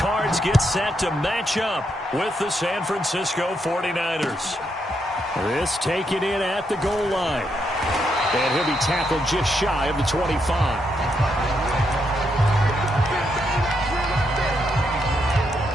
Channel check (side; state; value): both; normal; correlation 0.79